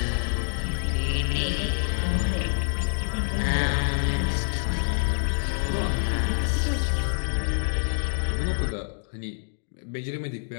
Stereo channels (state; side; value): silent; right; digital silence